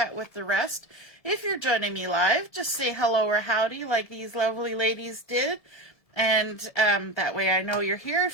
with the rest. If you're joining me live, just say hello or howdy like these lovely ladies did. And that way I know you're here.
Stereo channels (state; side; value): late; right; 1.7 ms